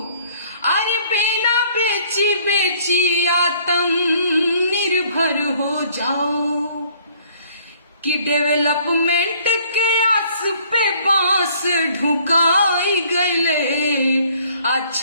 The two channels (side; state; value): both; inverted; correlation -0.58